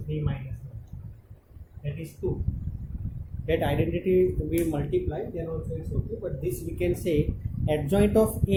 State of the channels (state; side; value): identical; both; correlation 1.00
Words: 3 minus 1, that is 2. That identity we multiply, then also it's okay, but this we can say adjoint of